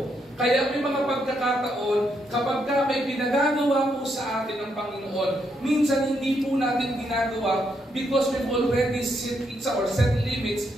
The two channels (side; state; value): both; normal; correlation 0.78